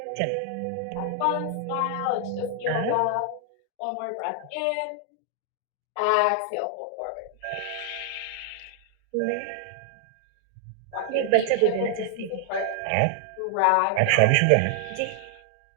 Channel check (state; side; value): different; both; correlation 0.00